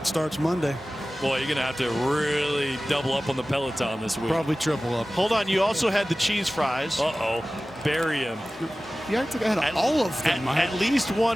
starts Monday. Boy, you're going to have to really double up on the Peloton this week. Probably triple up. Hold on, you also had the cheese fries. Uh-oh. Bury him. Yeah, I had all of them. At least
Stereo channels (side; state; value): both; normal; correlation 0.97